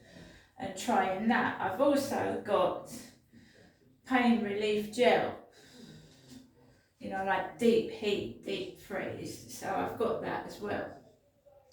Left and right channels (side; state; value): both; identical; correlation 1.00